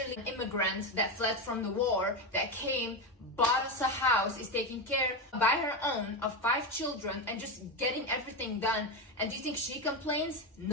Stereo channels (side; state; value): both; normal; correlation 0.14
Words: an immigrant that fled from the war, that came, bought us a house, is taking care by her own of 5 children and just getting everything done. And do you think she complains?